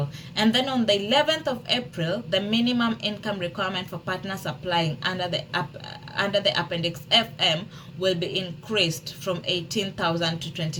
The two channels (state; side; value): identical; both; correlation 1.00